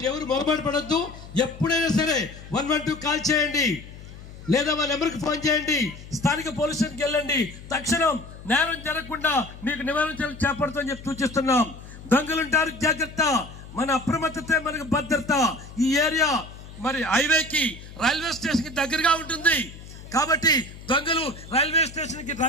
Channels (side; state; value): left; noise; hum, 16 dB below the sound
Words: ఎవరు మొరబాటు పడద్దు. ఎప్పుడైనా సరే 112 కాల్ చేయండి, లేదా మా నెంబర్కి ఫోన్ చేయండి. స్థానిక పోలీస్ స్టేషన్కి వెళ్ళండి. తక్షణం నేరం జరగకుండా మీకు నివారణ చర్యలు చేపడతామని చెప్పి సూచిస్తున్నాం. దొంగలుంటారు జాగ్రత్త, మన అప్రమత్తతే మనకు భద్రత. ఈ ఏరియా మరి హైవేకి, రైల్వే స్టేషన్కి దగ్గరగా ఉంటుంది. కాబట్టి దొంగలు రైల్వే స్టేషన్కి